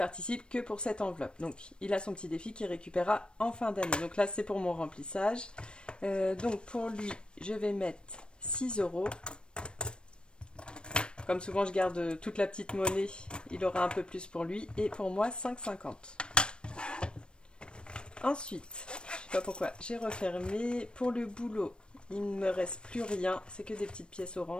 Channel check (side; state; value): right; late; 0.055 ms